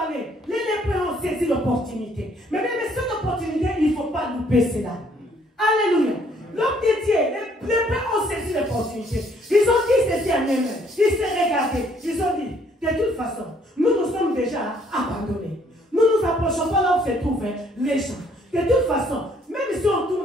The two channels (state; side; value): normal; both; correlation 0.65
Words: les lépreux ont saisi l'opportunité. Mais même cette opportunité, il ne faut pas louper cela. Alléluia. L'homme de Dieu, les lépreux ont saisi l'opportunité. Ils ont dit ceci à eux-mêmes. Ils se regardaient. Ils ont dit, de toute façon, nous nous sommes déjà abandonnés. Nous ne nous approchons pas là où se trouvent les gens. De toute façon, même si on